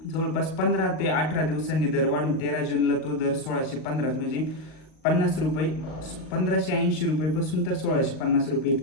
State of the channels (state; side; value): late; right; 38 ms